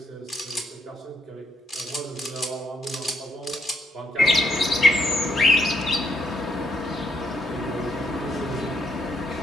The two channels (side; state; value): both; normal; correlation 0.72